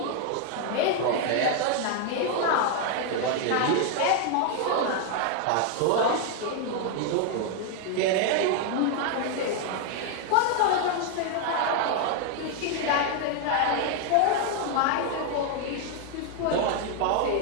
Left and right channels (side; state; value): both; different; correlation 0.01